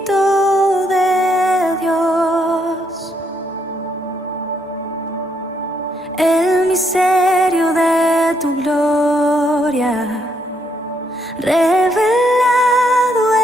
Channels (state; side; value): normal; both; correlation 0.75